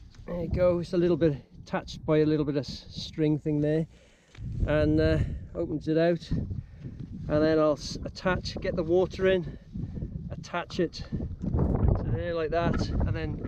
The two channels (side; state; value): both; identical; correlation 1.00